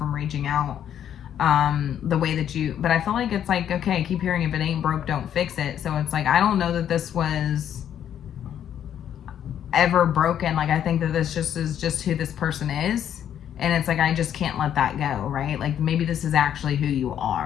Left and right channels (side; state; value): right; quieter; 9.8 dB